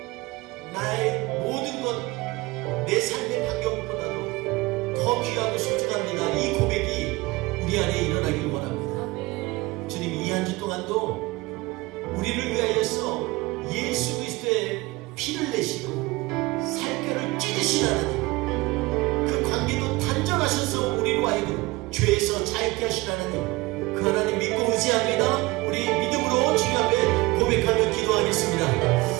나의 모든 것, 내 삶의 환경보다도 더 귀하고 소중합니다. 이 고백이 우리 안에 일어나길 원합니다. 주님, 이 한 주 동안도 우리를 위하여서 예수 그리스도의 피를 내시고 살결을 찢으신 하나님, 그 관계도 단절하셔서 우리로 하여금 죄에서 자유케 하신 하나님, 그 하나님 믿고 의지합니다. 우리 믿음으로 주님 앞에 고백하며 기도하겠습니다.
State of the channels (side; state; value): left; quieter; 22.0 dB